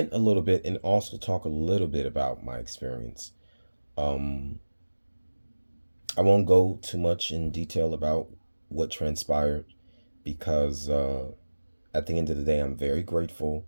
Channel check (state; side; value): inverted; both; correlation -1.00